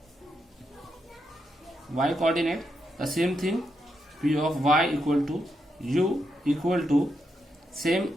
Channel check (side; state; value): both; normal; correlation 0.82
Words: coordinate, the same thing, p of y equal to u equal to same